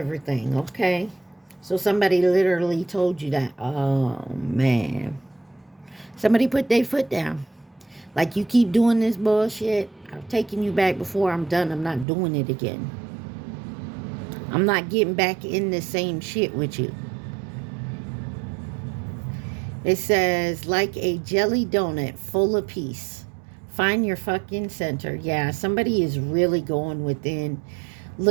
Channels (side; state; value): left; drops out; at 12.1 s